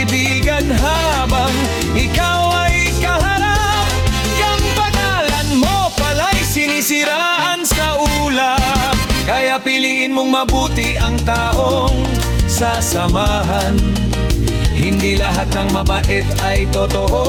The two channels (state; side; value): identical; both; correlation 1.00